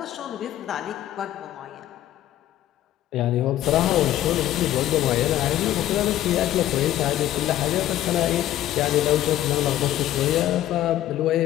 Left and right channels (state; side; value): quieter; right; 13.1 dB